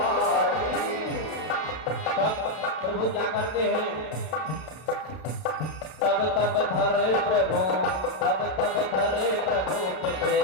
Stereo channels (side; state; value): right; late; 32 ms